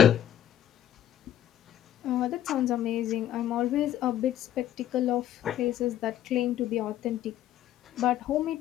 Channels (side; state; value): right; quieter; 11.6 dB